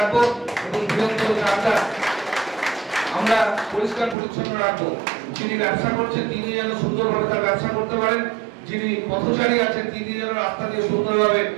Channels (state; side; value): drops out; left; at 4.2 s